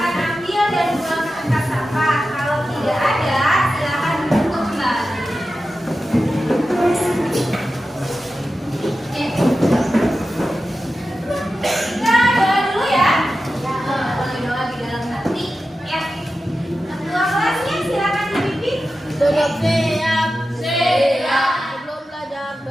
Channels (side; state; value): both; normal; correlation 0.92